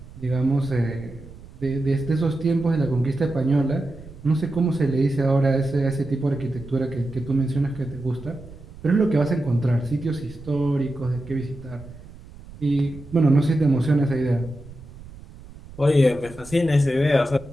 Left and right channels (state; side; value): noise; right; rumble, 18 dB below the sound